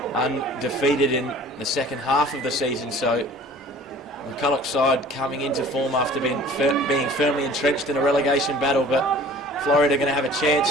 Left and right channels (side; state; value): both; normal; correlation 0.47